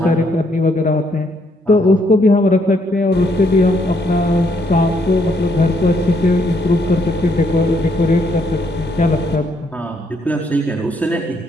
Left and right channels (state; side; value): normal; both; correlation 0.72